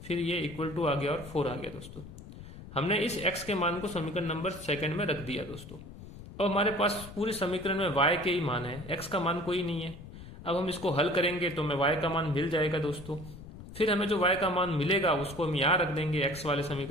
फिर ये इक्वल टू आ गया और 4 आ गया दोस्तों। हमने इस x के मान को समीकरण नंबर सेकंड में रख दिया दोस्तों। अब हमारे पास पूरे समीकरण में y के ही मान है, x का मान कोई नहीं है। अब हम इसको हल करेंगे तो हमें y का मान मिल जाएगा दोस्तों। फिर हमें जो y का मान मिलेगा उसको हम यहाँ रख देंगे x वाले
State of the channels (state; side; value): noise; left; rumble, 14 dB below the sound